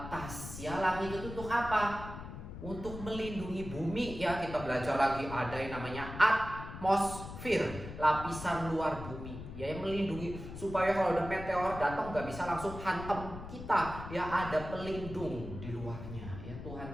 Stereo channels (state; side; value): noise; left; rumble, 10 dB below the sound